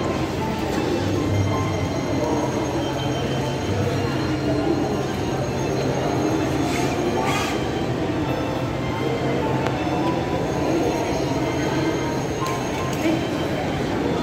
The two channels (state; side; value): identical; both; correlation 1.00